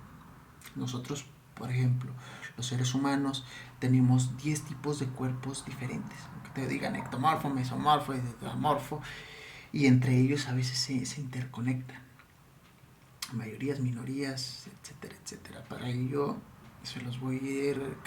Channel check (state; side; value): identical; both; correlation 1.00